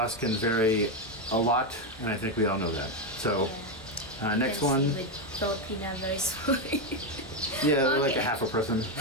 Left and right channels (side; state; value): both; normal; correlation 0.07